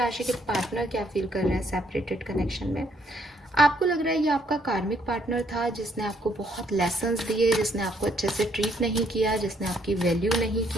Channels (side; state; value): both; normal; correlation 0.69